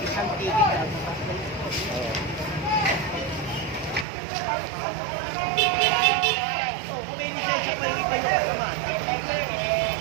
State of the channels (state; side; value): drops out; left; at 4.0 s